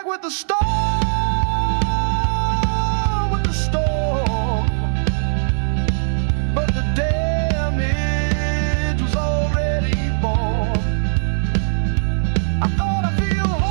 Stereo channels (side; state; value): left; silent; digital silence